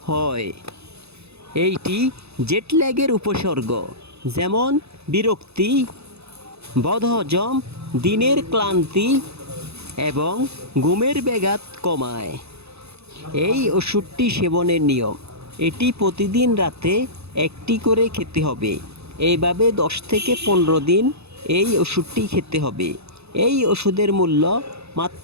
হয়। এইটি জেটল্যাগের উপসর্গ, যেমন বিরক্তি, বদহজম, দিনের ক্লান্তি এবং ঘুমের ব্যাঘাত কমায়। এই ওষুধটি সেবনের নিয়ম: এটি প্রতিদিন রাতে একটি করে খেতে হবে। এইভাবে 10 থেকে 15 দিন এই ওষুধটি খেতে হবে। এই ওষুধের মূল্য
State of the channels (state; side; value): late; left; 0.79 ms